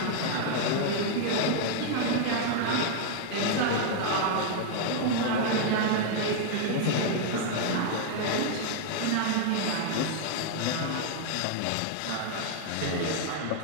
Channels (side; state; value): both; different; correlation 0.00